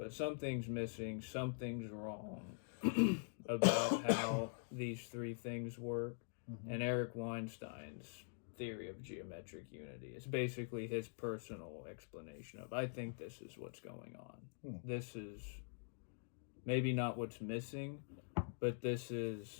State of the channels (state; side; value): silent; right; digital silence